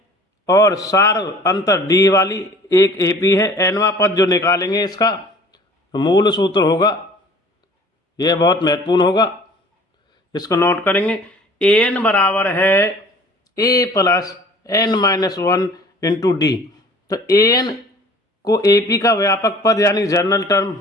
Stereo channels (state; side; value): normal; both; correlation 0.49